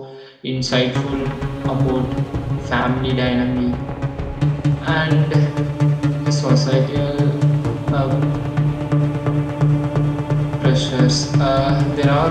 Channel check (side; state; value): both; identical; correlation 1.00